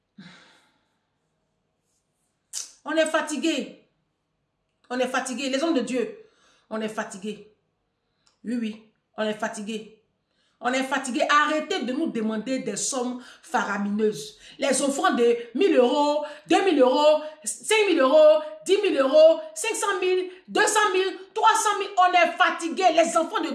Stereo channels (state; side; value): identical; both; correlation 1.00